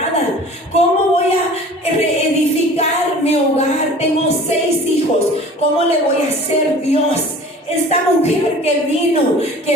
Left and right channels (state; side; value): normal; both; correlation 0.44